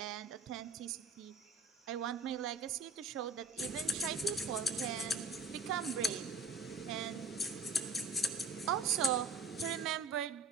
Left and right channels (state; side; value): quieter; left; 3.9 dB